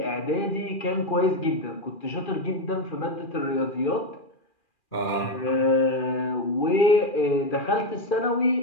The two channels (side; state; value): right; late; 2.4 ms